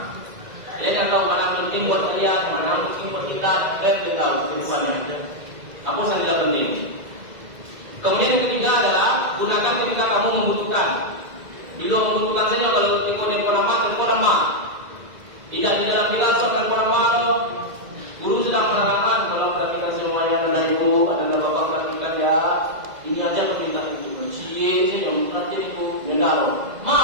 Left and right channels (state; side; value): late; left; 2.0 ms